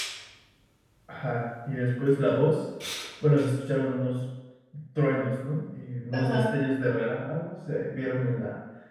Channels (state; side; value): identical; both; correlation 1.00